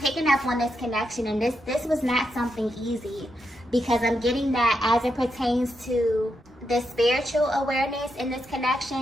up on this connection, and this was not something easy, because I'm getting that as it pertains to the spiritual awareness in this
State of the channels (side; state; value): both; normal; correlation 0.83